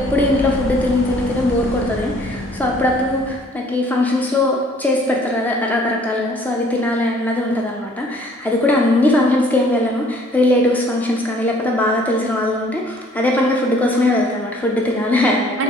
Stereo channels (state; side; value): normal; both; correlation 0.57